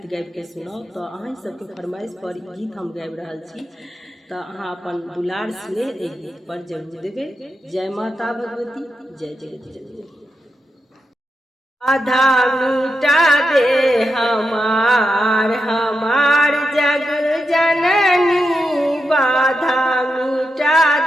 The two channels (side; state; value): both; normal; correlation 0.86